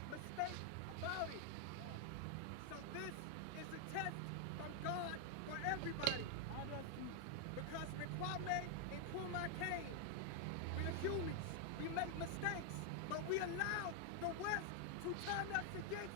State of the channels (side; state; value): both; different; correlation 0.00